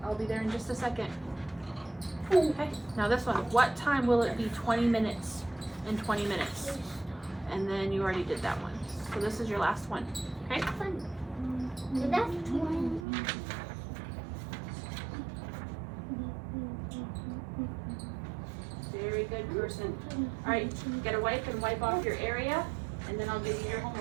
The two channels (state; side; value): drops out; left; at 13.1 s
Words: I'll be there in just a second. Okay, now this one. What time will it be 20 minutes and 20 minutes? And then you already did that one. So this is your last one. Okay? So that's 20. Very good person. Alright, get a wipe and wipe off your area. And then I'll give you your